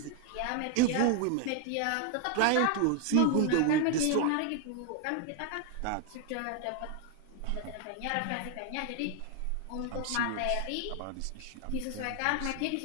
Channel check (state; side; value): different; both; correlation 0.01